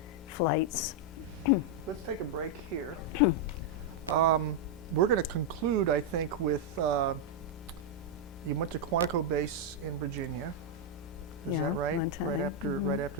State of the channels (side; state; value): both; normal; correlation -0.02